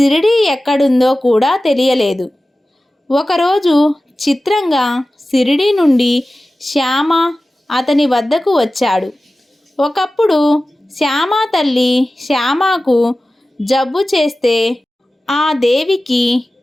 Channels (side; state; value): both; normal; correlation 0.96